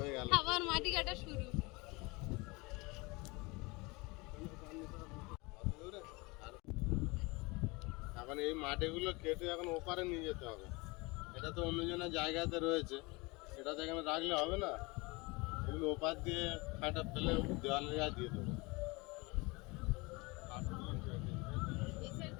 গেল। আবার মাটি কাটা শুরু। এখন এই মাটিগুলো কেটে এখন ওপারে নিয়ে যেতে হবে, এটা তো অন্যজনের জায়গাতে রয়েছে, এটা তো এখানে রাখলে হবে না, এগুলো ওপার দিয়ে কাটা ফেলে দেওয়ালের গায়ে দিয়ে দেবো।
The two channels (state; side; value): quieter; right; 25.6 dB